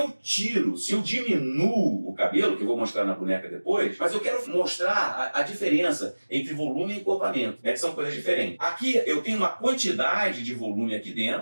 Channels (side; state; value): both; inverted; correlation -1.00